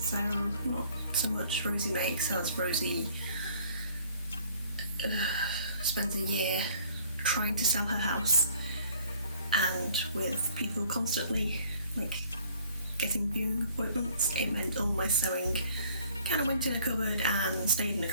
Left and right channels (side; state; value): both; inverted; correlation -0.57